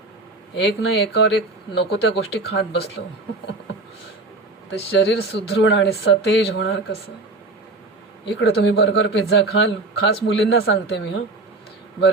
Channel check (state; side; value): quieter; left; 3.1 dB